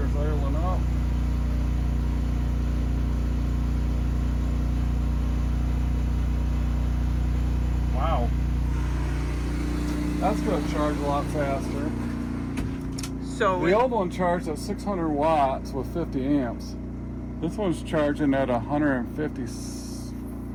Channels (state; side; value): identical; both; correlation 1.00